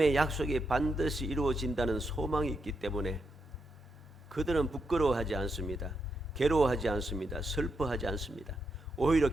약속이 반드시 이루어진다는 소망이 있기 때문에 그들은 부끄러워하지 않습니다. 괴로워하지 않습니다. 슬퍼하지 않습니다. 오히려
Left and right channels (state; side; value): normal; both; correlation 0.82